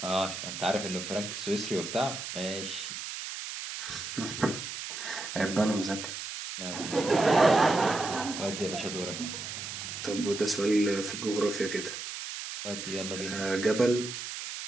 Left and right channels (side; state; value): right; noise; hiss, 7 dB below the sound